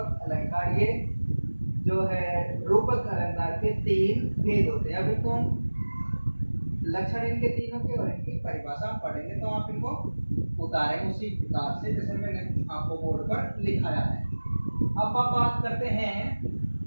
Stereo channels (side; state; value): both; inverted; correlation -1.00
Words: अलंकार। ये जो है रूपक अलंकार के 3 भेद होते हैं। अभी तो लक्षण इनके तीनों के और इनकी परिभाषा हम पढ़ेंगे। तो आप इनको उतारें उसी प्रकार से जैसे मैंने आपको बोर्ड पर लिखाया है। अब आप बात करते हैं